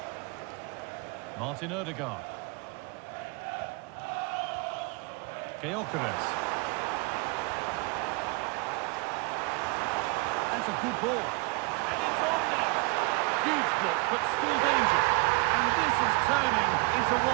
Martin Odegaard. Gyokeres. That's a good ball. And it's on now. Huge block, but still danger. And this is turning into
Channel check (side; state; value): left; quieter; 27.6 dB